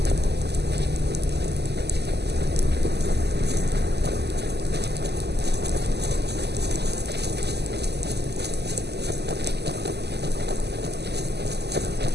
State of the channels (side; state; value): left; late; 0.49 ms